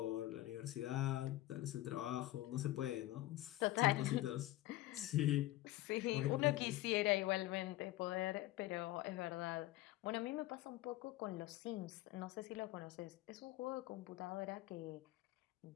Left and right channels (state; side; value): quieter; right; 16.6 dB